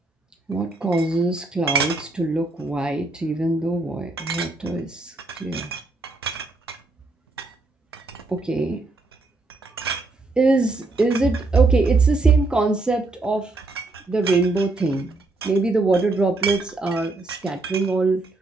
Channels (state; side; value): quieter; left; 3.2 dB